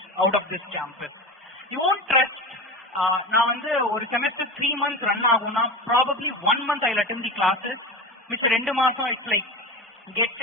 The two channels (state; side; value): normal; both; correlation 0.26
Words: out of this campus. You won't trust. நான் வந்து ஒரு செமஸ்டர் 3 months ரன் ஆகும்னா probably 1 month I'll attend the classes, which 2 மாசம் it's like gets